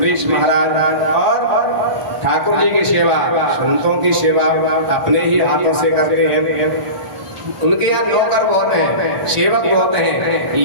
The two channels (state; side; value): late; left; 1.4 ms